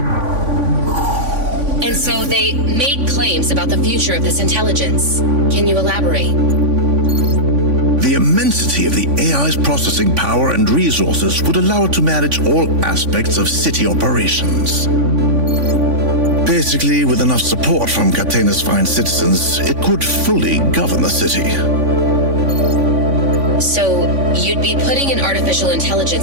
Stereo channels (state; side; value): late; left; 3.5 ms